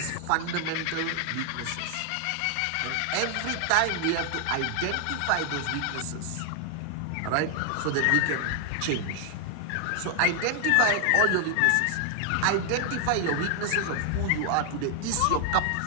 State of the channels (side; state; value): both; different; correlation 0.00